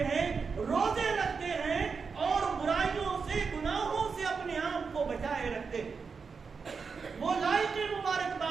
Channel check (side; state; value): left; quieter; 5.3 dB